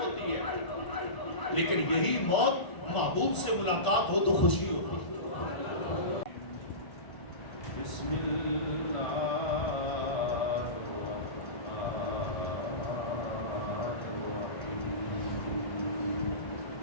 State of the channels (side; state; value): right; late; 1.0 ms